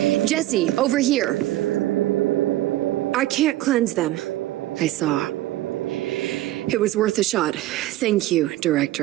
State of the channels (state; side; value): quieter; left; 15.9 dB